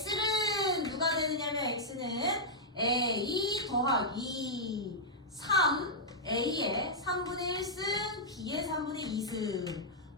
누가 되느냐면 X는 A 더하기 3 A의 3분의 1승 B의 3분의 2승.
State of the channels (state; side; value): normal; both; correlation -0.07